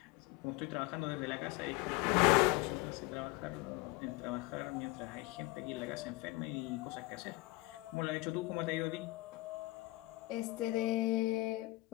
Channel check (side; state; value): right; quieter; 21.2 dB